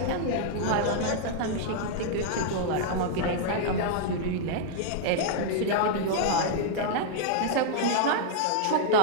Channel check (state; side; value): different; both; correlation -0.01